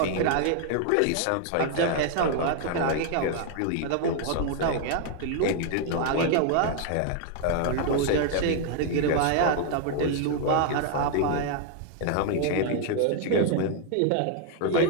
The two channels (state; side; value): different; both; correlation 0.00